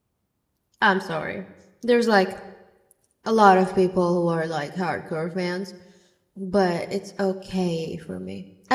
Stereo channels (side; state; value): both; identical; correlation 1.00